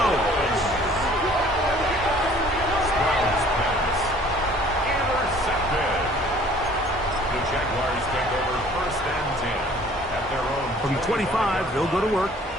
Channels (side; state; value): both; normal; correlation 0.53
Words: Stroud's pass. Intercepted. The Jaguars take over first and 10 at their own. From 25, they'll go to work.